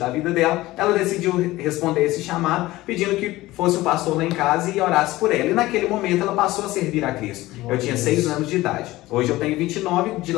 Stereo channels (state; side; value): quieter; right; 17.9 dB